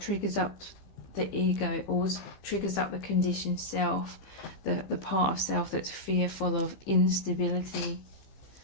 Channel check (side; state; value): right; late; 15 ms